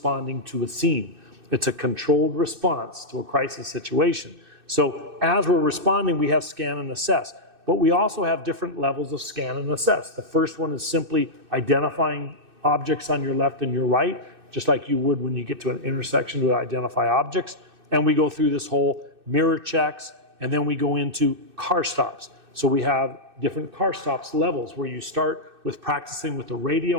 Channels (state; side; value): late; left; 2.6 ms